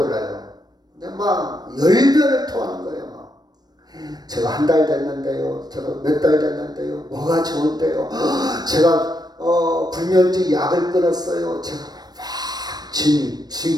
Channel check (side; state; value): left; late; 0.19 ms